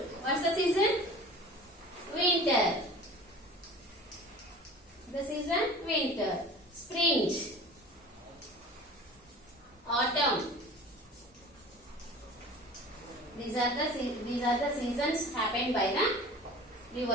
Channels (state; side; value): normal; both; correlation 0.41